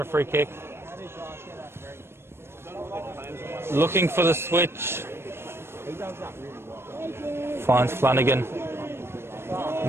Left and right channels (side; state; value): left; late; 0.12 ms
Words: free kick. Looking for the switch. Finds Flanagan.